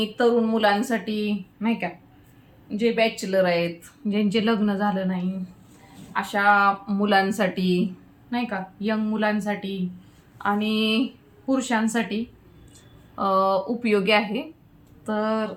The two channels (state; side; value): identical; both; correlation 1.00